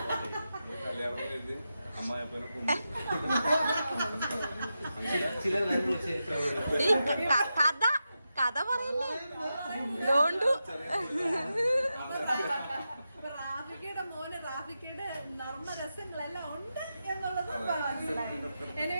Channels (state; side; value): inverted; both; correlation -0.89